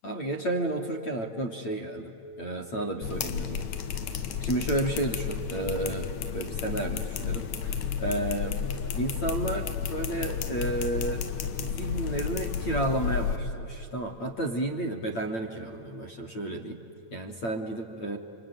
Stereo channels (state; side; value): late; right; 8.8 ms